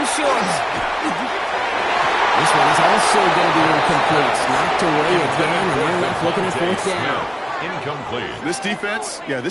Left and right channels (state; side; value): identical; both; correlation 1.00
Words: short. This one is also going to be incomplete. Knocked away again, and they're left looking at 4th down. Incomplete. This defense,